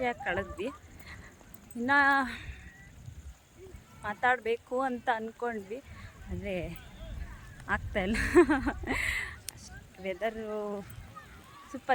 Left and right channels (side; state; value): both; identical; correlation 1.00